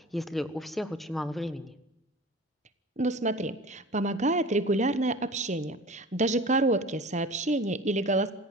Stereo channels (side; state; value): both; normal; correlation 0.38